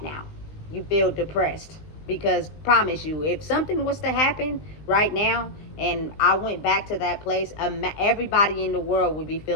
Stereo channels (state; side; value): late; right; 19 ms